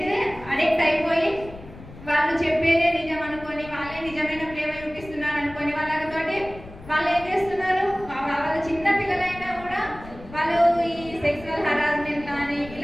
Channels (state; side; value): noise; left; rumble, 17 dB below the sound